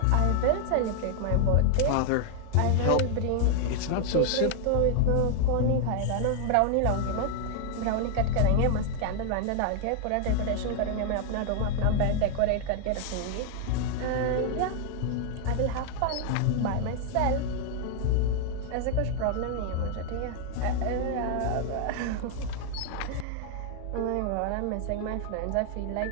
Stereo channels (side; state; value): both; different; correlation 0.00